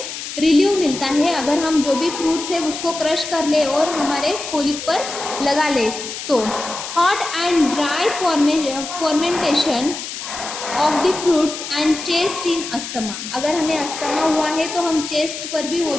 रिलीव मिलता है अगर हम जो भी फ्रूट्स है उसको क्रश कर ले और हमारे कोलिक पर लगा ले तो। Hot and dry fermentation of the fruits and chest in asthma, अगर हमें अस्थमा हुआ है तो हम चेस्ट पर भी वो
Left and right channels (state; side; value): noise; left; hiss, 8 dB below the sound